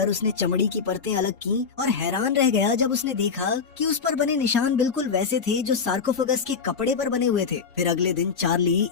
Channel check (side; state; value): right; quieter; 5.6 dB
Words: उसने चमड़ी की परतें अलग की और हैरान रह गया जब उसने देखा कि उस पर बने निशान बिल्कुल वैसे थे जो सार्कोफेगस के कपड़े पर बने हुए थे। फिर अगले दिन चार्ली